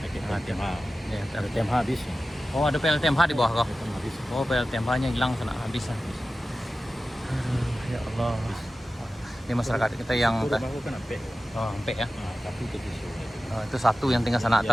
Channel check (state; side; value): normal; both; correlation 0.95